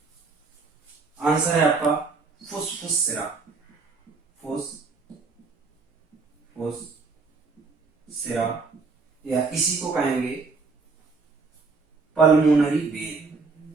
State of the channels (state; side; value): quieter; left; 4.4 dB